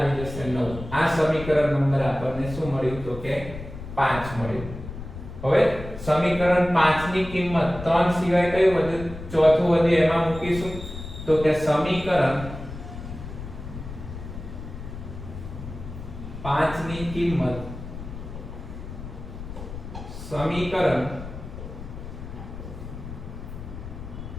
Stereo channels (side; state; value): left; noise; rumble, 11 dB below the sound